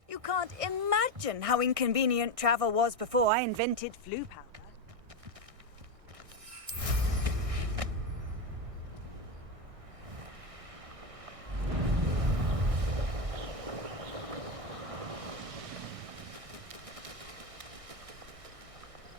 You can't imagine how inconvenient travel was before I invented flu powder.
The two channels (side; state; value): left; late; 1.6 ms